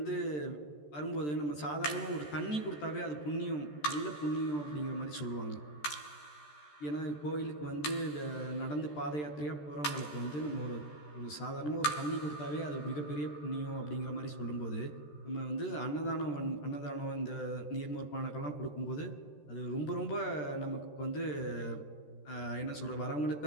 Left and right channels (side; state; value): right; late; 14 ms